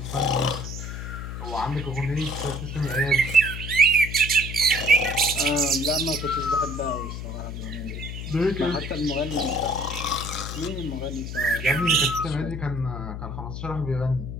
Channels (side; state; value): left; noise; hum, 7 dB below the sound